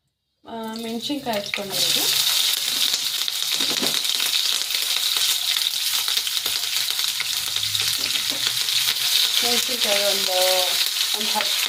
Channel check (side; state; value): both; identical; correlation 1.00